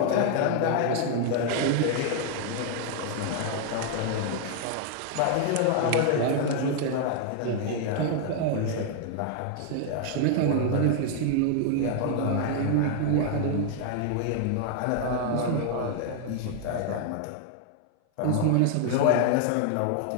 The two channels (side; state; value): both; different; correlation 0.00